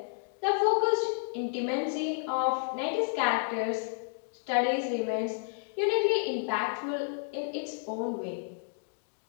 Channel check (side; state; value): right; silent; digital silence